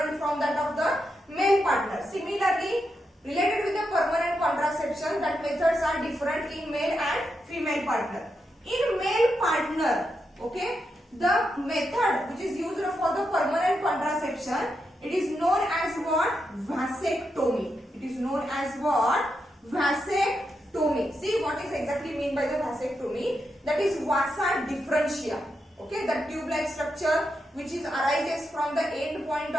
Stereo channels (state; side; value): normal; both; correlation 0.85